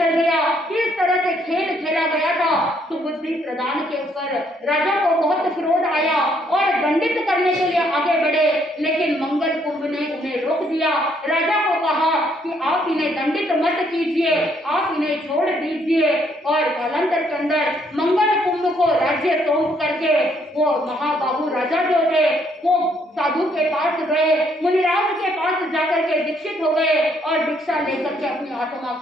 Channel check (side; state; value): both; normal; correlation 0.69